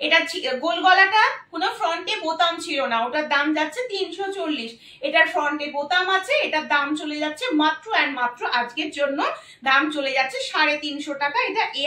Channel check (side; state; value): both; identical; correlation 1.00